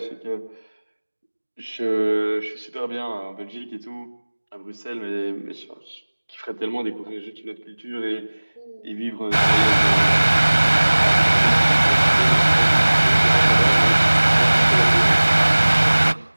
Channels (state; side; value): inverted; both; correlation -1.00